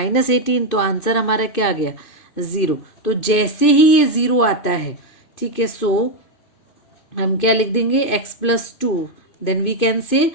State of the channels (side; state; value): right; late; 2.5 ms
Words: तो आंसर हमारा क्या आ गया, 0। तो जैसे ही ये 0 आता है, ठीक है, सो हम क्या लिख देंगे, x+2, then we can say